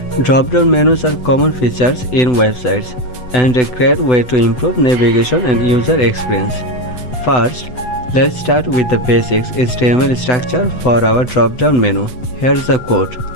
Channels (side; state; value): right; late; 8.0 ms